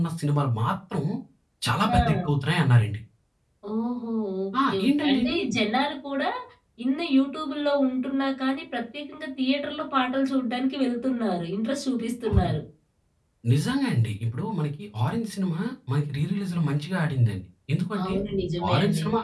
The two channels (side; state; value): both; identical; correlation 1.00